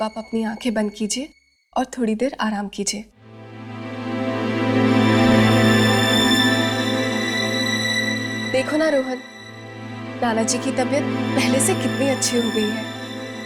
आप अपनी आंखें बंद कीजिए और थोड़ी देर आराम कीजिए। देखो ना रोहन, नाना जी की तबीयत पहले से कितनी अच्छी हो गई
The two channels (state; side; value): identical; both; correlation 1.00